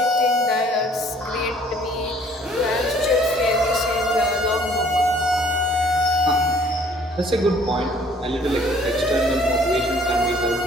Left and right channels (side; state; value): both; normal; correlation 0.57